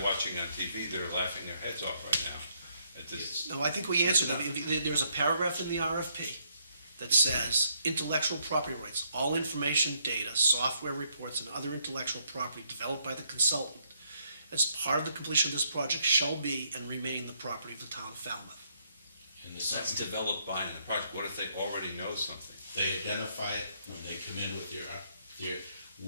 watching on TV that are laughing their heads off right now at this. No, I think we answered that. There's a paragraph in the RFP that says, intellectual property rights, all information, data, software reports, and other intellectual property developed by the consultant as part of the completion of this project shall be and remain the property of the town of Falmouth. And the That's second, developed by in the project. What if they already know something? they identify it when they come in with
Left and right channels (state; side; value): inverted; both; correlation -0.72